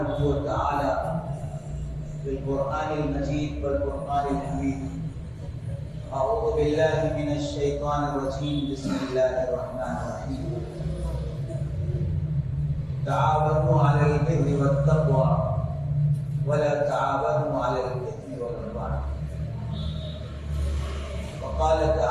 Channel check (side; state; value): both; identical; correlation 1.00